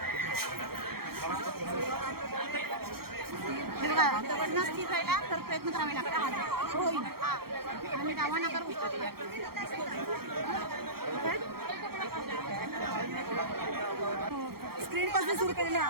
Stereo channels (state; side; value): late; left; 0.94 ms